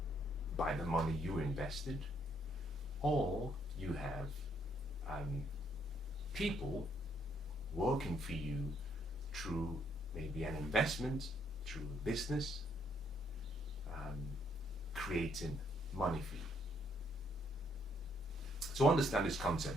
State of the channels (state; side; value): normal; both; correlation 0.71